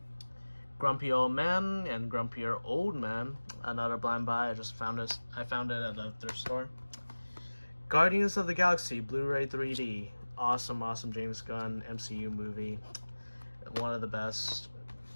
Grumpy Old Man and Grumpier Old Man. Another blind buy. I just found this. I found it at the thrift store. Guardians of the Galaxy Blu-ray 3D. Awesome James Gunn MCU movie. One of the best.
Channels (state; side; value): inverted; both; correlation -1.00